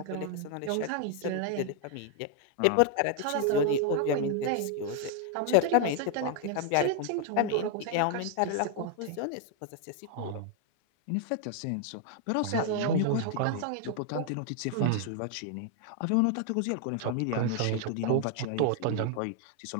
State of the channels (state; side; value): different; both; correlation 0.00